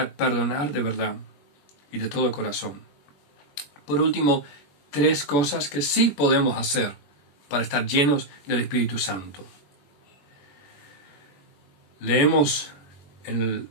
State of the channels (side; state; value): right; late; 21 ms